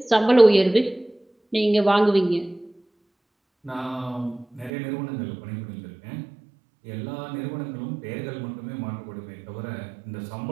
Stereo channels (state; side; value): drops out; left; at 4.7 s